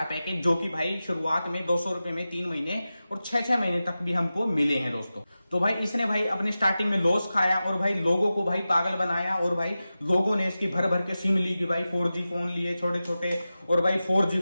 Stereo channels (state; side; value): inverted; both; correlation -0.94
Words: पैकेज, जो कि भाई शुरुआत में 200 रुपए में 3 महीने और 6-6 महीने तक भी हमको मिले हैं दोस्तों। तो भाई इसने भाई अपने स्टार्टिंग में लॉस खाया और भाई लोगों को भाई पागल बनाया। और भाई लोगों ने इसकी भर भर के सिम ली कि भाई 4G फोन लिए छोटे छोटे, और भाई 4G